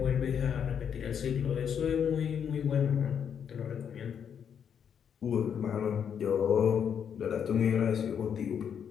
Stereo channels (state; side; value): quieter; right; 7.9 dB